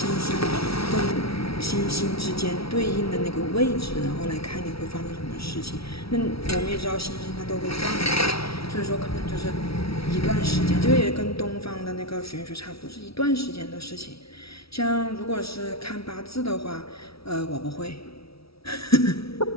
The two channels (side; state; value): right; late; 0.76 ms